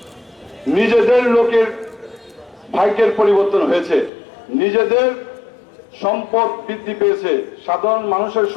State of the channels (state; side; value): drops out; right; at 4.1 s